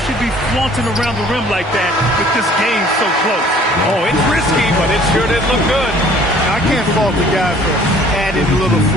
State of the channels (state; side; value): normal; both; correlation 0.54